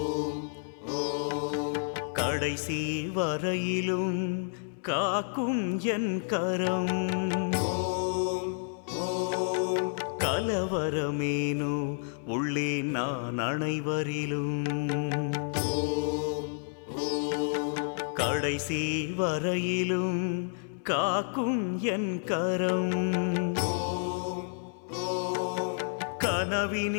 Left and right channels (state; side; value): silent; right; 58 dB below the other